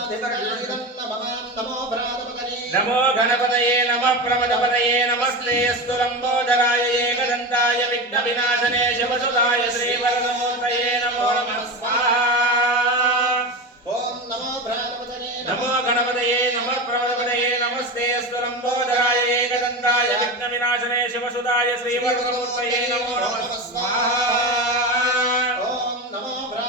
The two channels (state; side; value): normal; both; correlation 0.22